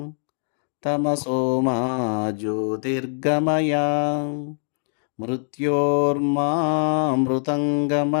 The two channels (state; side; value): silent; right; digital silence